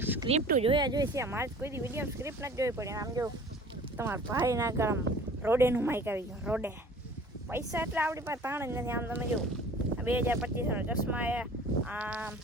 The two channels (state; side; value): normal; both; correlation 0.47